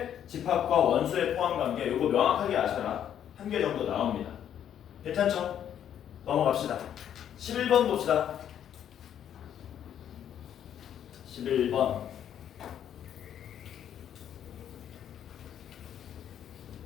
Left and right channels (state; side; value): quieter; right; 9.8 dB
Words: 집합과 원소의 포함관계 이거 명확하게 아셔라. 한 개 정도 나옵니다. 괜찮죠? 넘어갑시다. 11번 봅시다. 11번.